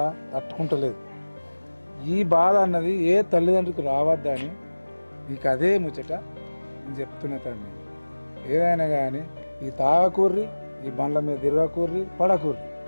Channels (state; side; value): inverted; both; correlation -1.00